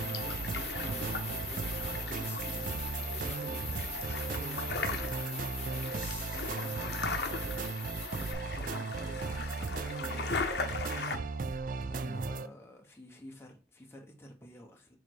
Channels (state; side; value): normal; both; correlation 0.40